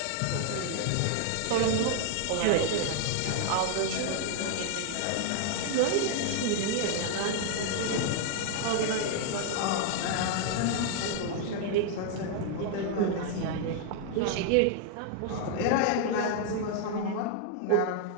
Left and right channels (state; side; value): different; both; correlation 0.00